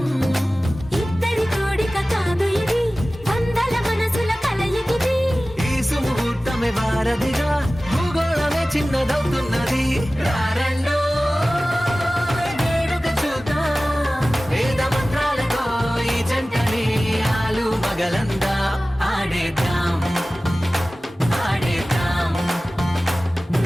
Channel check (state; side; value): normal; both; correlation 0.97